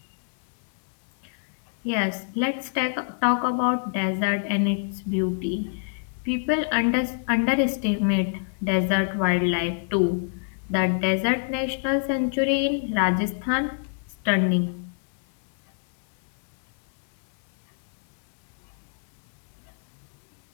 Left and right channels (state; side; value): silent; right; 61 dB below the other